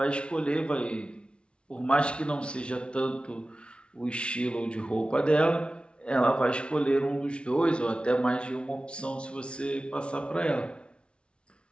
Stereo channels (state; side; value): late; right; 0.058 ms